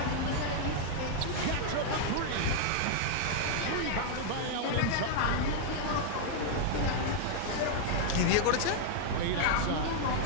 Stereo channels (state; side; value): different; both; correlation -0.01